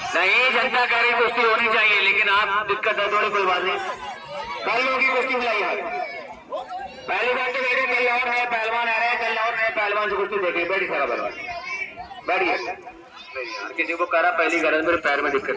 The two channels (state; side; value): identical; both; correlation 1.00